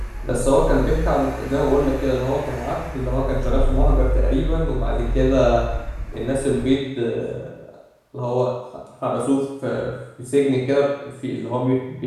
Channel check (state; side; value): identical; both; correlation 1.00